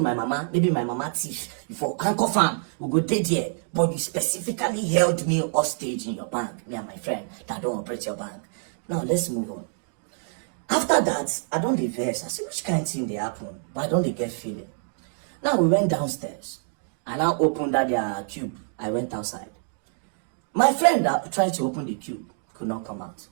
my mama. Maybe my mama thief. You for handcuff am. We go dead here. But you specifically held me hostage in your bank. Me and my friend that don't operate your bank. Now, let's move on. After that, I don't diverse. I see which kind of thing they happen. But I don't get feeling. Now, we went downstairs. I now opened that their cube. I went outside. My friend that tried to open the cube could not come out.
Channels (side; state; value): left; silent; digital silence